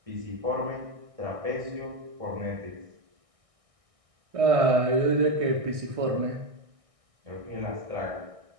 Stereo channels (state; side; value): late; left; 1.6 ms